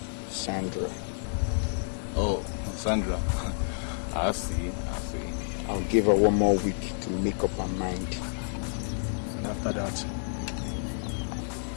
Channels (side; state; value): right; silent; digital silence